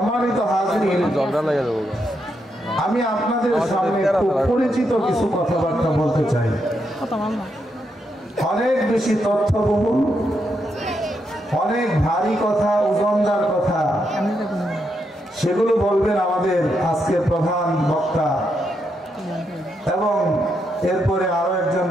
হাজিরিন আমি আপনাদের সামনে খুব পরিচিত কিছু কথাবার্তা বলতে চাই অনেক বেশি তথ্যবহুল অনেক ভারী কথা ওজনদার কথা সেগুলো বলবেন আমাদের আজকের প্রধান বক্তা এবং এরপরে আরো একজন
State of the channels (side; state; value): both; normal; correlation 0.81